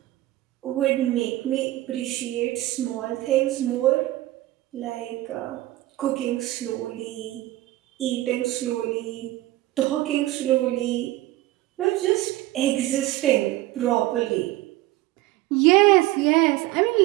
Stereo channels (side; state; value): left; quieter; 16.9 dB